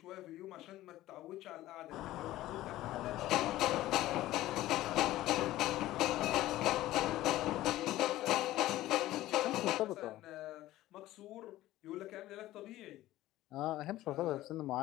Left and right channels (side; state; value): right; quieter; 15.5 dB